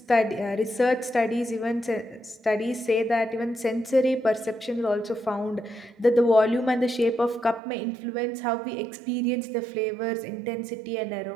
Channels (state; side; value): drops out; left; at 7.6 s